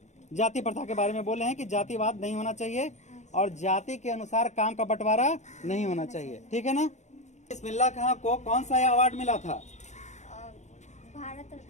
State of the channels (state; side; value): late; right; 0.34 ms